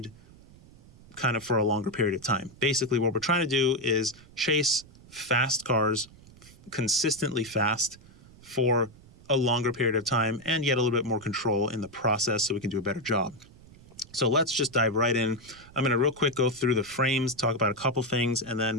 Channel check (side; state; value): right; noise; rumble, 23 dB below the sound